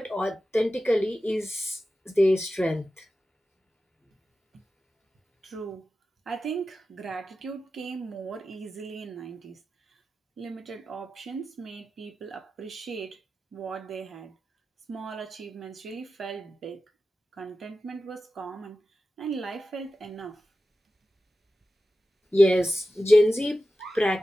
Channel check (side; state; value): both; normal; correlation 0.93